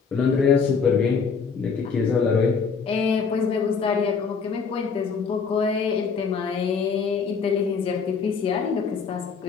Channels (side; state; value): right; quieter; 5.6 dB